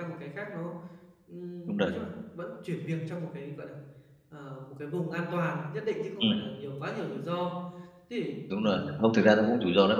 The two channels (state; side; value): identical; both; correlation 1.00